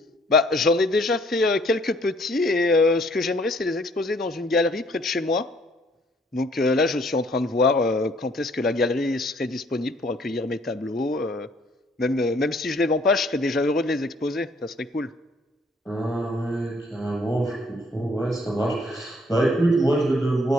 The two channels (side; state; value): both; normal; correlation 0.63